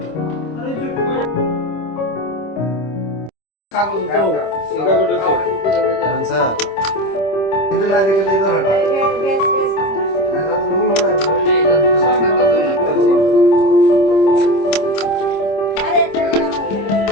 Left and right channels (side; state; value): right; late; 26 ms